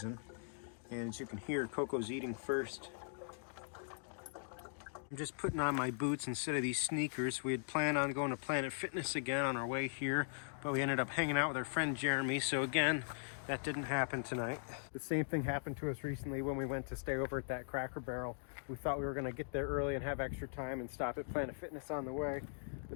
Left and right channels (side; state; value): right; silent; digital silence